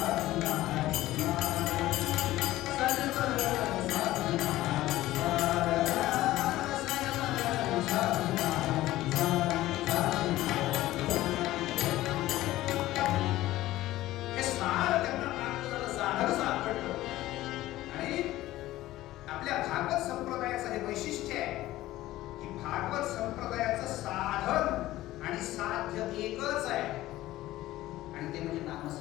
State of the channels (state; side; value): quieter; right; 16.0 dB